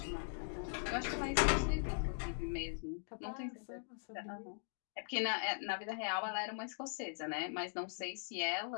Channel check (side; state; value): right; silent; digital silence